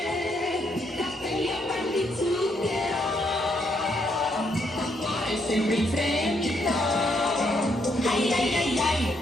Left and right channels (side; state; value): both; normal; correlation 0.75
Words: capelli a pan di zucchero, cuore sempre in fremito. Ai ai ai ai,